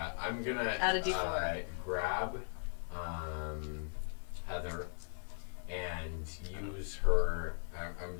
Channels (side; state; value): right; silent; 52 dB below the other